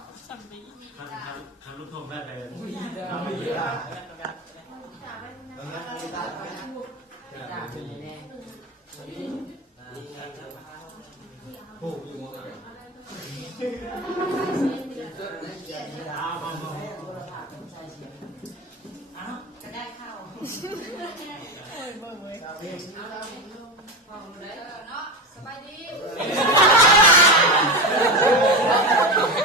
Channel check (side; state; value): both; normal; correlation 0.20